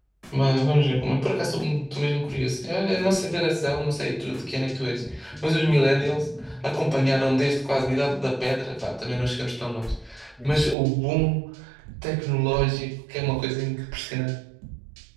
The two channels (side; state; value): left; drops out; at 10.8 s